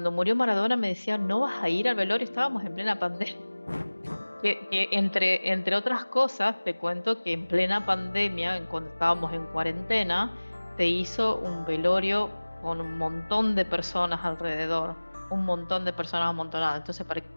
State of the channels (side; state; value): both; inverted; correlation -1.00